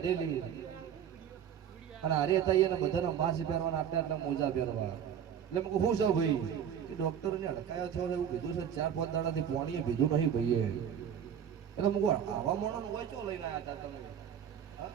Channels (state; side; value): quieter; left; 8.8 dB